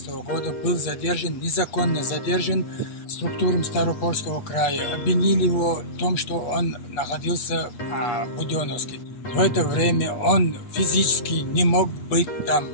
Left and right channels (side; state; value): right; late; 8.4 ms